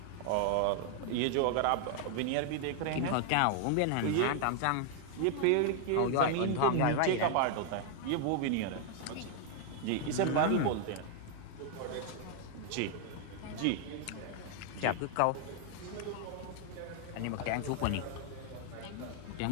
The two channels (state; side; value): different; both; correlation 0.00